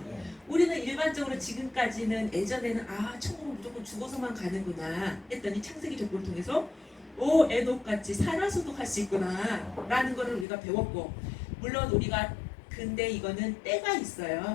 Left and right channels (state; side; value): drops out; right; at 10.5 s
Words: 우리는 일반적으로 지금까지는, 예전에는 천국은 무조건 죽어서만 가는구나 했더니 창세기 족보를 통해서 에녹같이 살아서도 갈 수 있구나 라는 거를 우리가 배웠고, 물론 우리가, 근데 이거는 때가